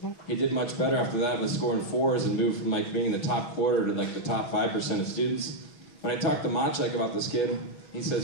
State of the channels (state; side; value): late; right; 6.3 ms